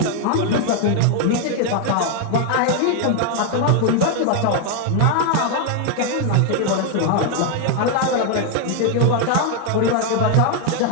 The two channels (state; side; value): different; both; correlation 0.00